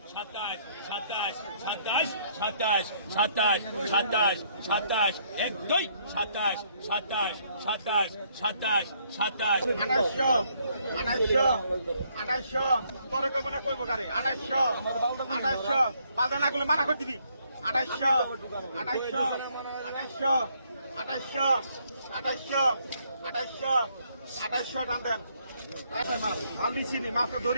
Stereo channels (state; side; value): inverted; both; correlation -0.68